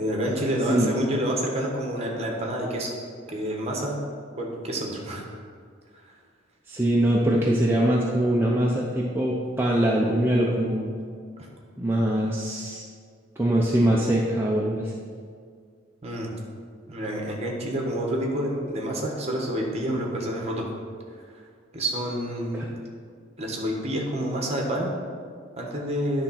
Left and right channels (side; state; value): both; normal; correlation 0.70